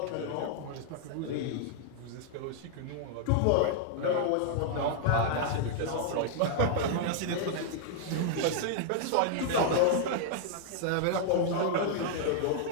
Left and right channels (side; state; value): both; different; correlation -0.01